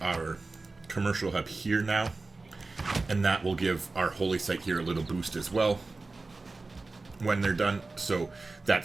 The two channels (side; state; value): left; quieter; 3.6 dB